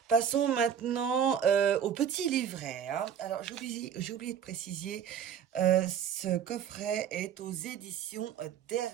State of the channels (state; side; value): quieter; left; 8.4 dB